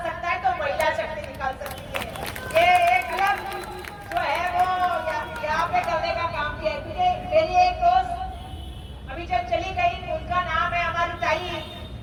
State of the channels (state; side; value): identical; both; correlation 1.00